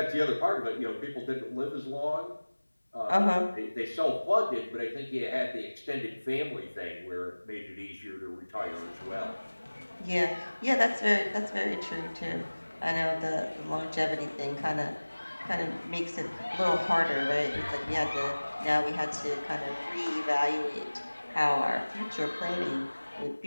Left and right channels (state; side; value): inverted; both; correlation -1.00